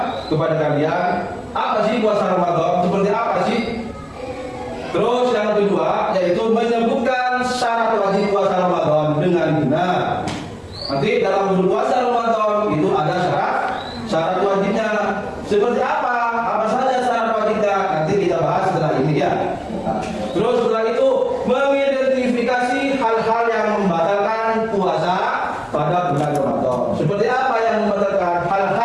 kepada kalian. Apa sih puasa Ramadan? Seperti apa sih? Terus yang kedua yaitu menyebutkan syarat wajib puasa Ramadan dengan benar. Nanti dalam berpuasa Ramadan itu ada syarat wajibnya. Seperti apa? Apa saja syarat wajibnya? Nanti kita bahas setelah ini ya. Nah, terus setelah itu mengidentifikasi hal-hal yang membatalkan puasa pada bulan Ramadan. Seperti apa yang membatalkan?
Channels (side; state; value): both; identical; correlation 1.00